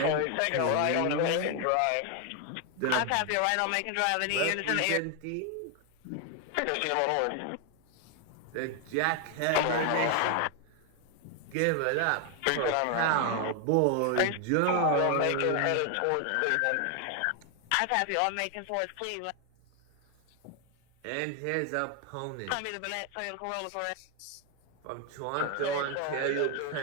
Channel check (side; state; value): both; different; correlation 0.01